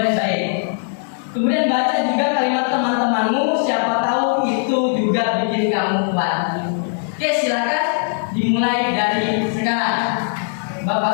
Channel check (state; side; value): silent; right; digital silence